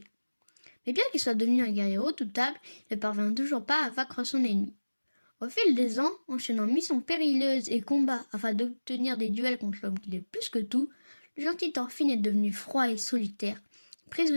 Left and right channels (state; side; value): inverted; both; correlation -1.00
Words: Mais bien qu'il soit devenu un guerrier redoutable, il ne parvient toujours pas à vaincre son ennemi. Au fil des ans, enchaînant missions périlleuses et combats afin d'obtenir des duels contre l'homme qu'il est plus que tout, le gentil Thorfinn est devenu froid et solitaire,